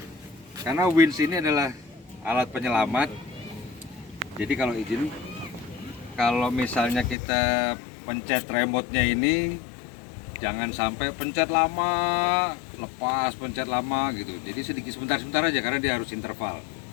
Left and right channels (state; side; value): drops out; right; at 7.2 s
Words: winch ini adalah alat penyelamat, jadi kalau izin, kalau misalnya kita pencet remote-nya ini jangan sampai pencet lama, lepas, pencet lama gitu. Jadi sedikit sebentar aja, karena dia harus interval